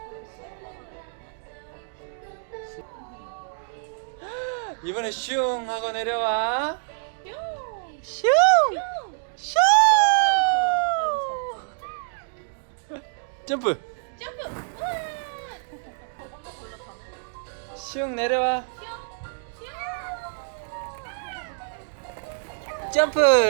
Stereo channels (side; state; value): left; silent; digital silence